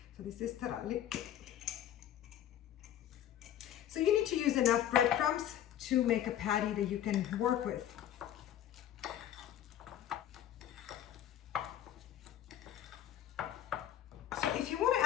So this is taralli. So you need to use enough breadcrumbs to make a patty that you can work with. So if you want to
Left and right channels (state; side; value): quieter; right; 11.3 dB